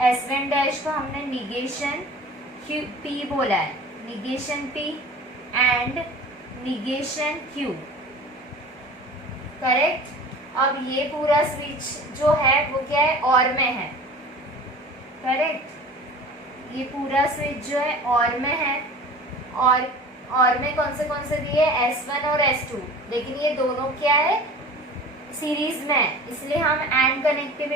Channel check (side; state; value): both; normal; correlation 0.40